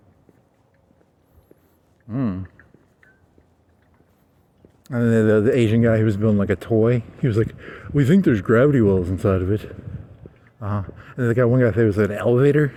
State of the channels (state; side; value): identical; both; correlation 1.00